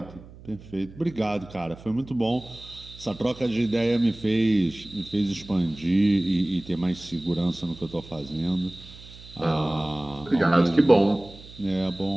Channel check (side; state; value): right; noise; hum, 19 dB below the sound